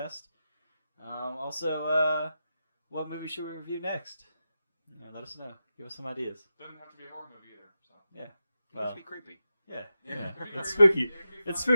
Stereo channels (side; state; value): both; inverted; correlation -0.90